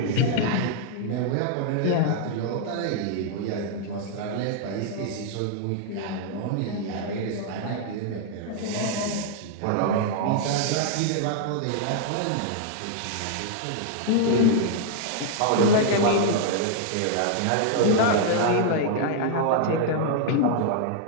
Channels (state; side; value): different; both; correlation -0.01